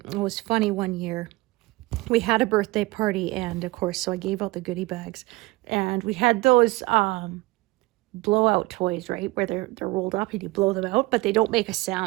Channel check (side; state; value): left; quieter; 21.8 dB